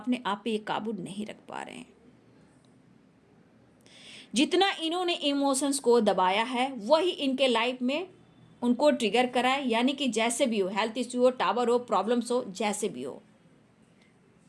आप पे ये काबू नहीं रख पा रहे हैं। जितना इन्होंने इमोशंस को दबाया है वही इनके लाइफ में उनको ट्रिगर करा है, यानी कि जैसे भी हो, हेल्थ इश्यू हो, टावर हो, प्रॉब्लम्स हो, जैसे भी हो,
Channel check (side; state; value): both; identical; correlation 1.00